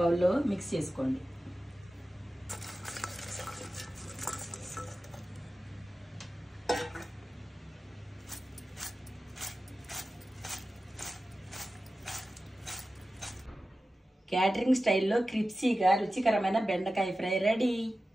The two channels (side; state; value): both; normal; correlation 0.94